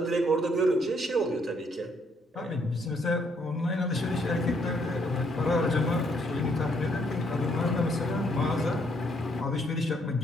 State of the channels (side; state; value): both; normal; correlation 0.70